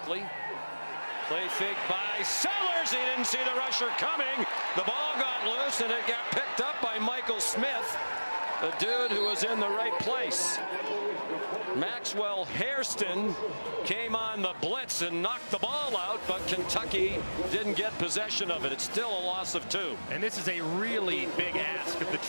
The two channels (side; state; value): both; inverted; correlation -1.00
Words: Play fake by Sellers. He didn't see the rusher coming. The ball got loose, and it got picked up by Michael Smith, the dude who was in the right place. Maxwell Hairston came on the blitz and knocked the ball out, but Kentucky didn't get possession of it. It's still a loss of 2. And this is a really big ask of the